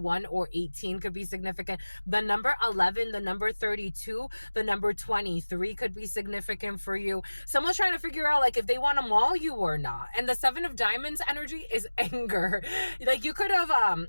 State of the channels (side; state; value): both; inverted; correlation -1.00